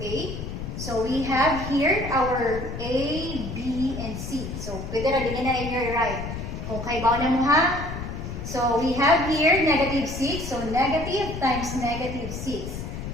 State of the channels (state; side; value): noise; left; rumble, 7 dB below the sound